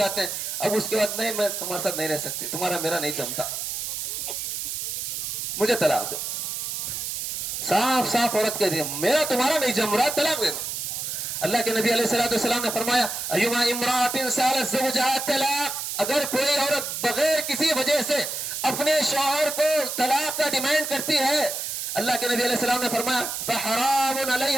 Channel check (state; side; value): noise; right; hiss, 4 dB below the sound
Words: ہیں، اب اس کے بعد نہیں میں تمہارے ساتھ نہیں رہ سکتی، تمہارا میرا نہیں جمتا، مجھے طلاق دو۔ صاف صاف عورت کہہ دی میرا تمہارا نہیں جم رہا، طلاق دے دو۔ اللہ کے نبی علیہ الصلوۃ والسلام نے فرمایا ایما امرأۃ سالت زوجہا طلاق، اگر کوئی عورت بغیر کسی وجہ سے اپنے شوہر کو طلاق کا ڈیمانڈ کرتی ہے، اللہ کے نبی علیہ السلام نے فرمایا فحرام